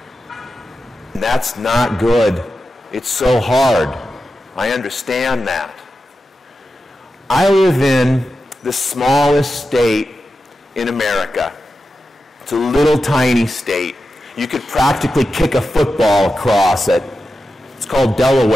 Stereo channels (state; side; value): normal; both; correlation 0.91